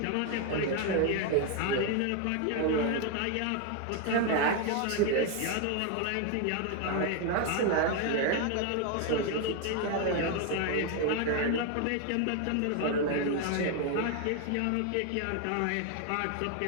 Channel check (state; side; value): different; both; correlation 0.01